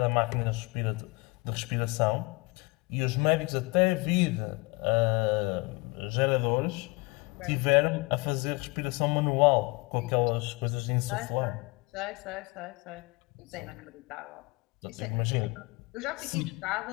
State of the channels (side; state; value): right; quieter; 26.4 dB